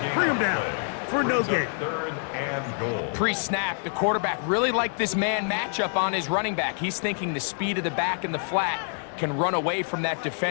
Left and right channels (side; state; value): right; silent; 61 dB below the other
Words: Bring him down for no gain. 3rd and goal. Pre-snap, the quarterback really liked this man matchup on his running back. He's thinking the speed of the back in the flat can run away from that